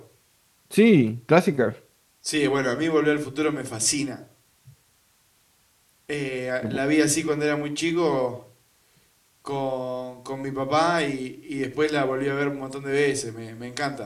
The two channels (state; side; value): identical; both; correlation 1.00